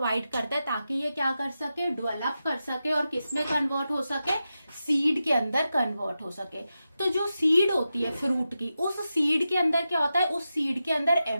करता है ताकि ये क्या कर सके, डेवलप कर सके और किस में कन्वर्ट हो सके, सीड के अंदर कन्वर्ट हो सके। तो जो सीड होती है फ्रूट की, उस सीड के अंदर क्या होता है, उस सीड के अंदर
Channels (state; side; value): inverted; both; correlation -0.91